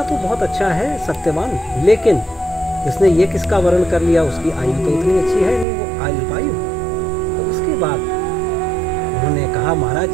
तो बहुत अच्छा है सत्यवान, लेकिन इसने ये किसका वरण कर लिया, उसकी आयु तो उतनी अच्छी है नहीं, वो अल्पायु। तो उसके बाद उन्होंने कहा महाराज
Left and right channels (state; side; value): drops out; left; at 5.7 s